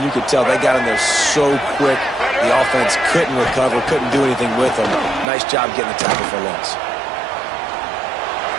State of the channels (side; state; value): left; drops out; at 5.2 s